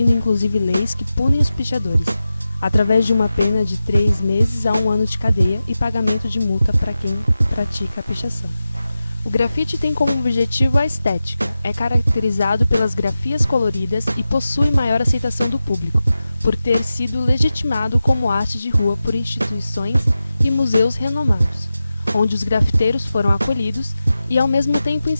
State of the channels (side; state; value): both; inverted; correlation -0.93